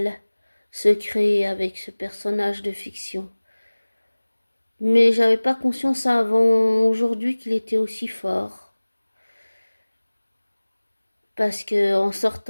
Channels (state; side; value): inverted; both; correlation -1.00